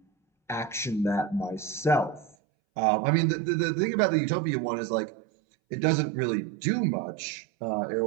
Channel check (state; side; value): drops out; left; at 2.4 s